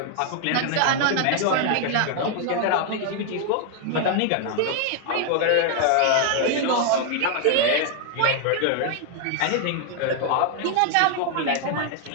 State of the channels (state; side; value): different; both; correlation 0.00